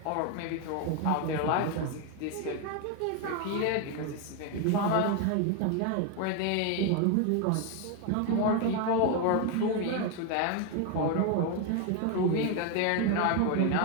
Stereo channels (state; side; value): different; both; correlation 0.01